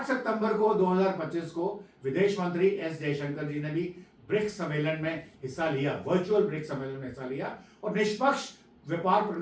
सितंबर को 2025 को विदेश मंत्री एस जयशंकर जी ने भी ब्रिक्स सम्मेलन में हिस्सा लिया, वर्चुअल ब्रिक्स सम्मेलन में हिस्सा लिया और निष्पक्ष व्यापार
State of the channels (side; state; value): both; identical; correlation 1.00